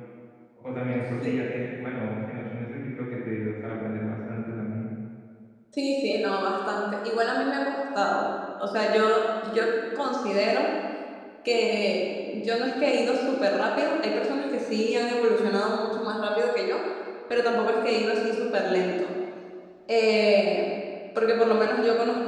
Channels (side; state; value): both; identical; correlation 1.00